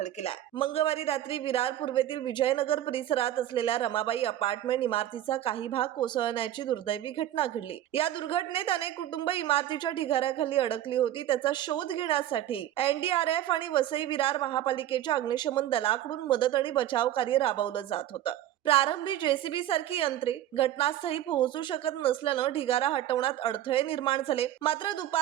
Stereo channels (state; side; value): quieter; left; 12.4 dB